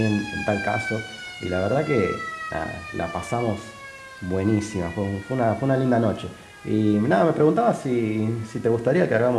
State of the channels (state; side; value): identical; both; correlation 1.00